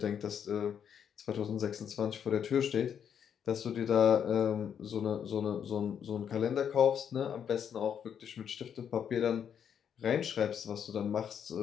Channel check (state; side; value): quieter; right; 8.2 dB